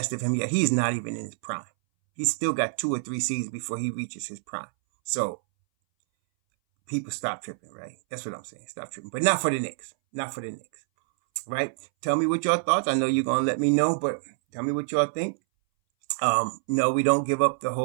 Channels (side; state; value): left; silent; 60 dB below the other